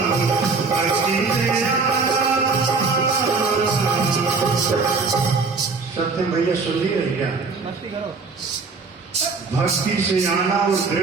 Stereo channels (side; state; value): left; quieter; 4.3 dB